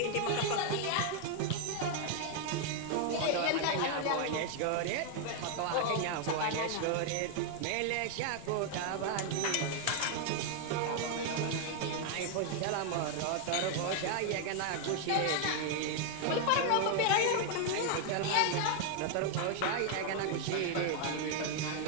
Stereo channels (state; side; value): different; both; correlation 0.00